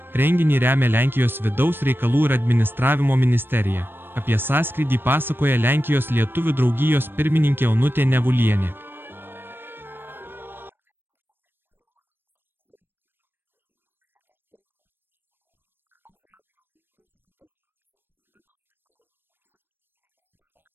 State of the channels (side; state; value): left; late; 0.10 ms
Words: Renginį remia Lenkijos vidaus reikalų ir administravimo ministerija. Apie sąskrydį pasakoja Lenkijos lietuvių draugijos pirmininkė Onutė Nevulienė. Tradiciškai Seinų Punsko Suvalkų lietuvių trikampio ansamblių koncertas vyks. Papildomai sukūrėme vaikams